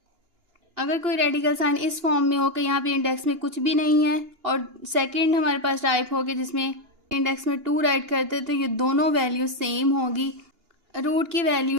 अगर कोई रेडिकल साइन इस फॉर्म में हो कि यहाँ पे इंडेक्स में कुछ भी नहीं है और सेकंड हमारे पास टाइप हो गया जिसमें इंडेक्स में 2 राइट करते तो ये दोनों वैल्यू सेम होगी। रूट की वैल्यू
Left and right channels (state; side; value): late; left; 2.9 ms